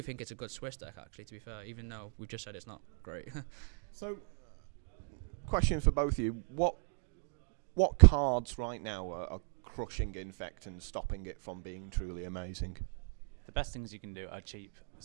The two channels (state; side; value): silent; left; digital silence